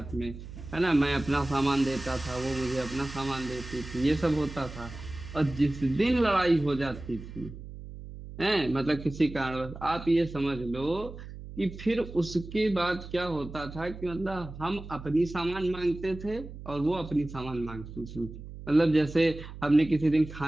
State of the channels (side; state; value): right; noise; hum, 13 dB below the sound